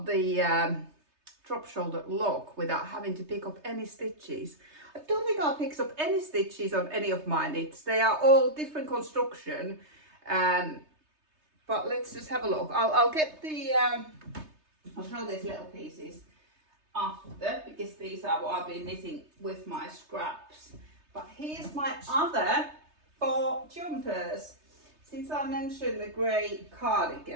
the drop shoulder look without having to pick up any stitches. I don't think I picked up any stitches on any of my knits. They are all different construction, but let's just have a look. I'll get the I'll show these little pieces after, because these are what I've been knitting with my scraps. But here's my other 4 jumpers. Since I mentioned the grey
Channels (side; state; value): left; late; 3.3 ms